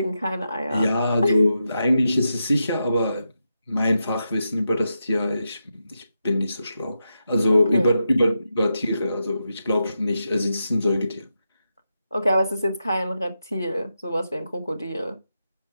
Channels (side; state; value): both; inverted; correlation -0.87